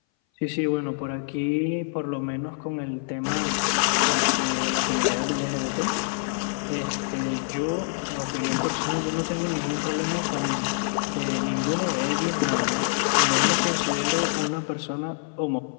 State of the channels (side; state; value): right; silent; 59 dB below the other